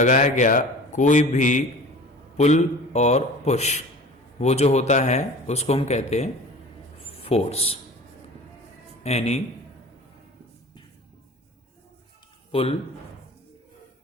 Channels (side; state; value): both; normal; correlation 0.41